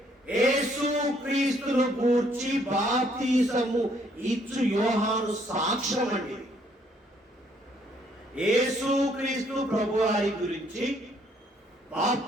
యేసు క్రీస్తును గూర్చి బాప్తిసము ఇచ్చు యోహాను సాక్ష్యం అండి. యేసు క్రీస్తు ప్రభువారి గురించి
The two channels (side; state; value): both; normal; correlation 0.67